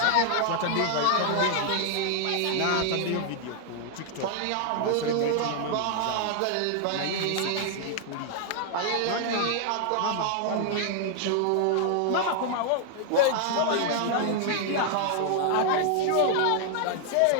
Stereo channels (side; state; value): both; different; correlation -0.01